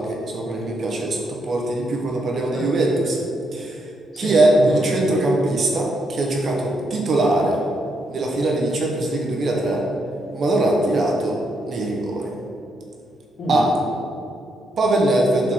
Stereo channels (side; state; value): both; normal; correlation 0.78